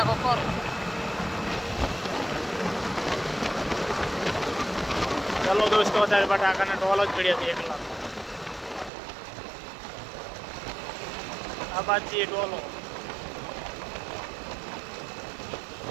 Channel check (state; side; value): drops out; left; at 8.9 s